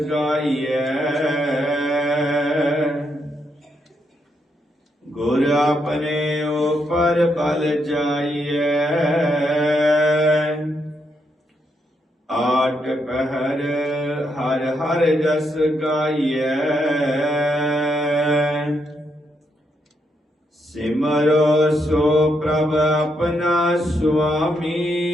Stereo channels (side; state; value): both; normal; correlation 0.79